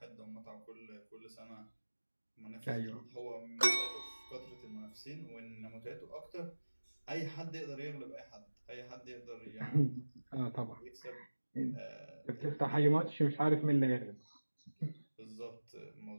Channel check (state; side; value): inverted; both; correlation -1.00